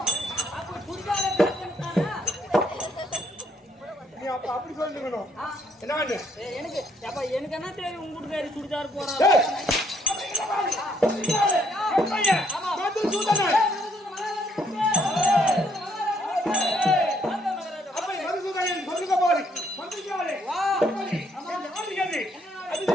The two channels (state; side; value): normal; both; correlation 0.69